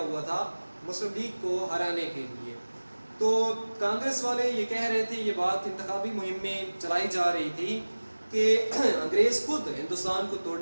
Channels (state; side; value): inverted; both; correlation -1.00